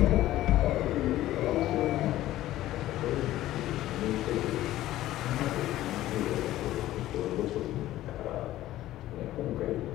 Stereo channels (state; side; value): quieter; right; 14.8 dB